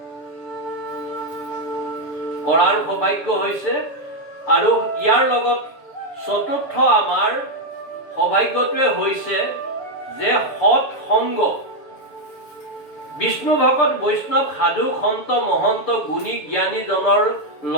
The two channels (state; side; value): late; right; 7.4 ms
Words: কৰাৰ সৌভাগ্য হৈছে। আৰু ইয়াৰ লগত চতুৰ্থ আমাৰ সৌভাগ্যটোৱে হৈছে যে সৎ সংগ, বিষ্ণু ভকত বৈষ্ণৱ সাধু সন্ত মহন্ত গুণী জ্ঞানীজনৰ